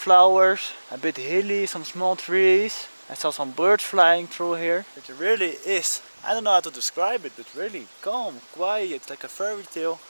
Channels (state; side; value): inverted; both; correlation -1.00